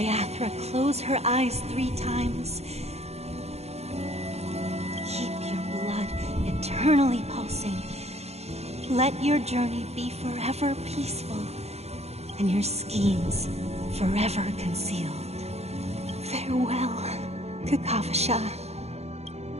close her eyes 3 times. Keep your blood eternally pulsing. Let your journey be forever peaceful, and your schemes forever concealed. Farewell, Kakavasha.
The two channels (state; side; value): late; left; 0.31 ms